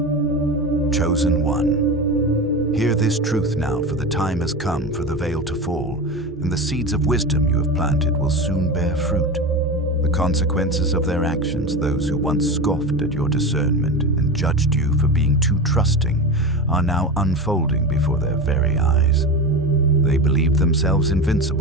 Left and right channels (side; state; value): both; normal; correlation 0.24